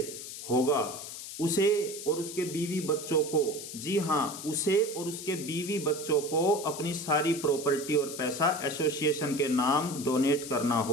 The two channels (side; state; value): left; noise; hiss, 10 dB below the sound